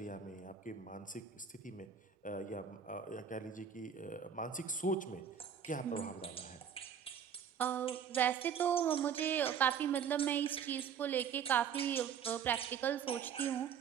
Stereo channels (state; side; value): quieter; left; 7.8 dB